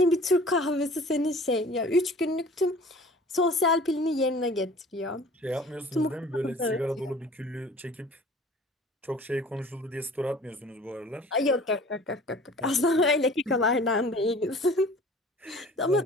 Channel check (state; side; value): normal; both; correlation 0.47